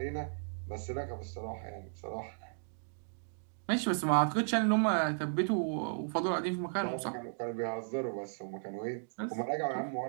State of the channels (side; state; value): left; silent; digital silence